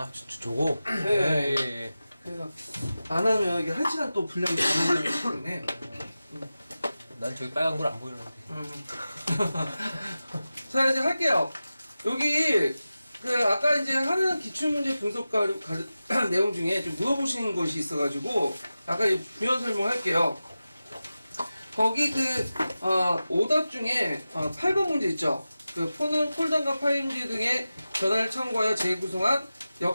저거? 네. 예. 그래서, 안 하면 이게 1시간 또 분량이 가능하기 때문에. 난 저기 빨간 걸 안 보이는데. 자, 이제 할게요. 여기, 아까 이제 하는 기출문제 분석 내용 중에 좀 물어보시는 것이 있어가지고, 아까 이제 부연 설명할게요. 거기 오답 중에, 8번 문제 있죠? 폰은 폴더과 파일지 등의 전화를 참고하여 재구성한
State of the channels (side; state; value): both; inverted; correlation -0.94